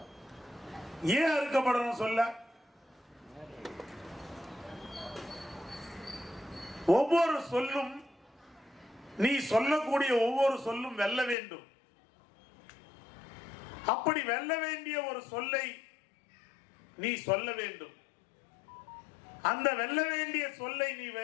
ஏன் அறுக்கப்படணும்? சொல்ல ஒவ்வொரு சொல்லும், நீ சொல்லக்கூடிய ஒவ்வொரு சொல்லும் வெல்ல வேண்டும். அப்படி வெல்ல வேண்டிய ஒரு சொல்லை நீ சொல்ல வேண்டும். அந்த வெல்ல வேண்டிய சொல்லை நீ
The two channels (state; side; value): drops out; right; at 11.4 s